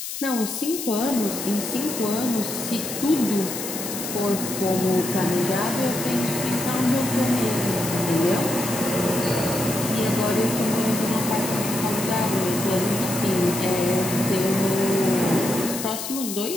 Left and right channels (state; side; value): noise; left; hiss, 6 dB below the sound